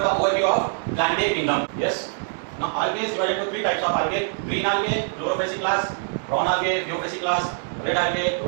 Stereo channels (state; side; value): silent; left; digital silence